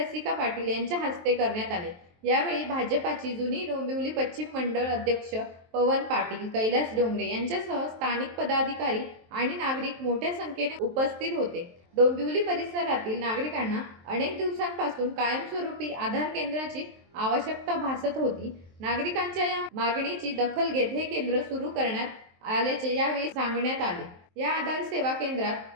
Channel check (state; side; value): late; left; 23 ms